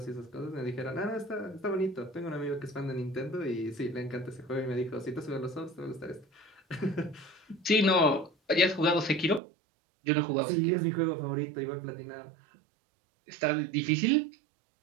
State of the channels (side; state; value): left; drops out; at 9.4 s